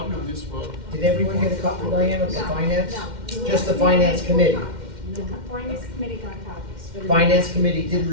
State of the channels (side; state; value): left; late; 2.1 ms